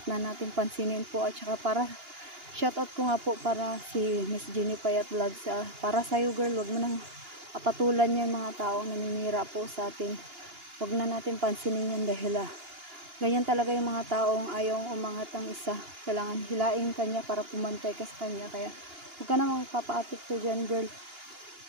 na natin pansinin po at saka para shoutout ko nga po para si Miss Jenny Payat Vlogs. Para sa'yo girl, wag mo nang patulan yan mga taong naninira po sa atin. Wag na natin pansinin yan dahil ganyan talaga yung mga taong ayaw umangat ang isa. Kailangan hilain kanya para pumantay ka sa kanya. Kaya huwag ka namang papa-apekto dyan girl.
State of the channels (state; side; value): late; left; 2.9 ms